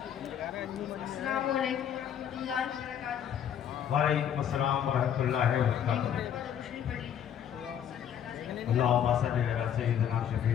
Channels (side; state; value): right; quieter; 9.3 dB